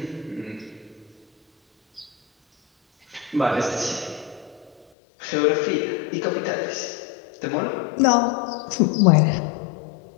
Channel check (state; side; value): drops out; right; at 4.9 s